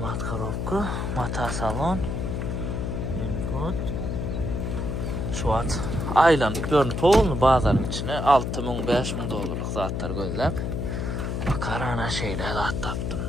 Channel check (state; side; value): noise; left; hum, 2 dB below the sound